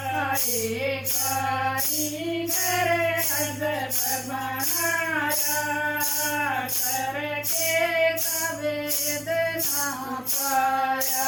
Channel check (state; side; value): identical; both; correlation 1.00